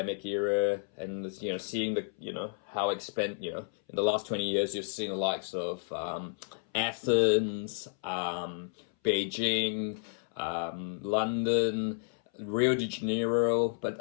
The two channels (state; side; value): silent; right; 57 dB below the other